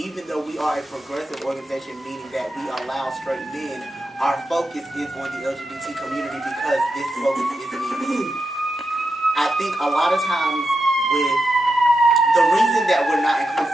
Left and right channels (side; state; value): both; normal; correlation 0.88